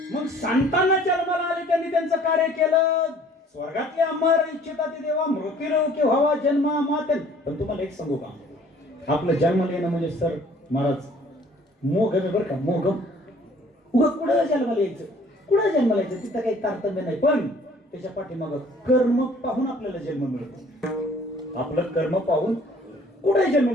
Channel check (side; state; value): both; normal; correlation 0.55